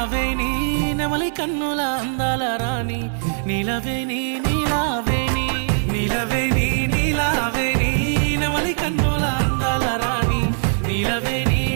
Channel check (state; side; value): silent; left; 59 dB below the other